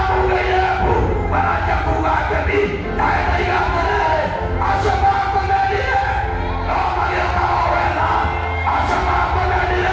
mbu maranjia kuuga ngemi nawe ndaiga atĩrĩrĩ acio makũmenire no magĩũkaga o wega acio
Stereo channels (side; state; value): both; identical; correlation 1.00